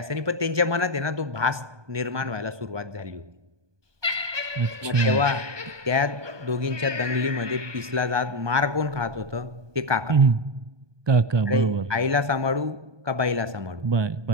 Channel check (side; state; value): left; late; 1.2 ms